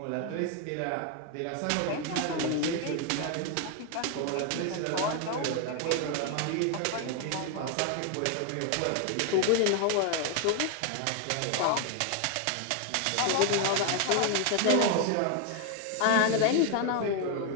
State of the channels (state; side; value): different; both; correlation 0.00